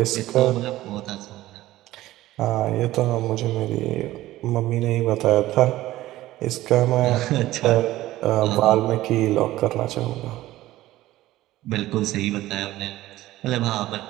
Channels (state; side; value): quieter; left; 15.9 dB